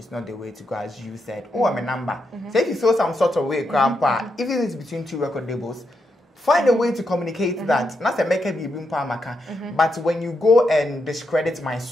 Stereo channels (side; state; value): both; normal; correlation 0.83